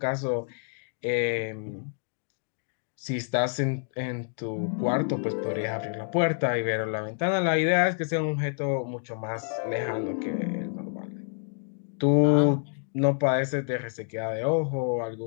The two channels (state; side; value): silent; right; 59 dB below the other